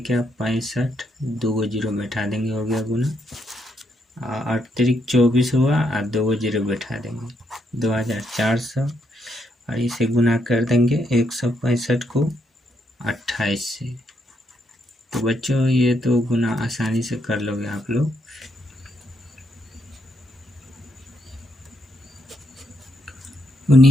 65, 2 0 बैठा देंगे, हो गया गुना। अतिरिक्त 24 हुआ और 2 0 बैठा देंगे, 2400। और इसे गुना कर देंगे 165 को 28 से। तो बच्चों ये तो गुना आसानी से कर लोगे आप लोग।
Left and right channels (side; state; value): both; normal; correlation 0.77